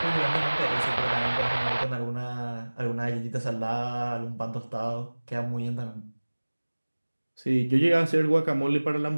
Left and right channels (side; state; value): both; inverted; correlation -1.00